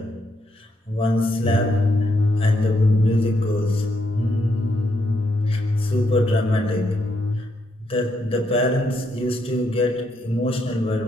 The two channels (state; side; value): normal; both; correlation 0.77